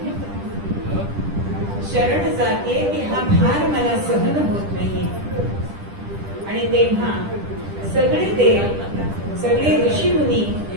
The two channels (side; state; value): left; late; 10 ms